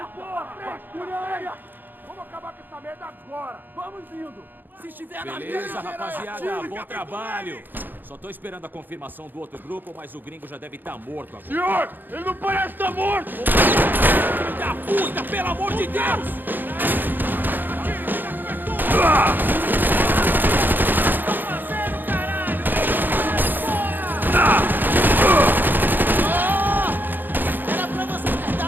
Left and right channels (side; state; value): left; late; 0.090 ms